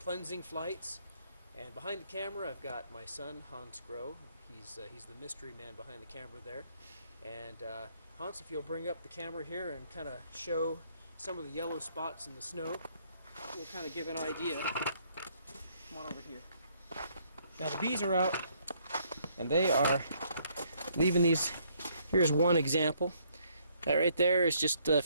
flights. And behind the camera I've got my son Hans Groh. He's the mystery man behind the camera there. And Hans, if you'll bring up the camera here and kind of show some of the yellow spots in the snow, we'll kind of give an idea. Come on over here. Now the bees are out and they are leaving these. Here's one example. That right there is just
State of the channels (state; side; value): inverted; both; correlation -0.67